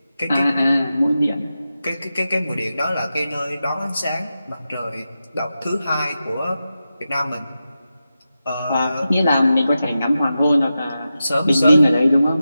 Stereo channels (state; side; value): inverted; both; correlation -0.91